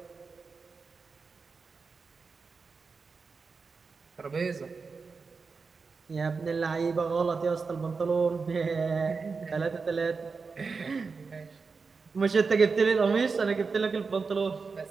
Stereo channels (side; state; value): left; quieter; 4.7 dB